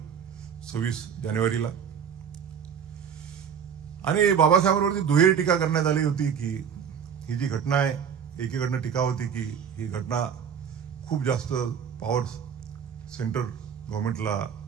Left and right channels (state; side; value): quieter; left; 7.7 dB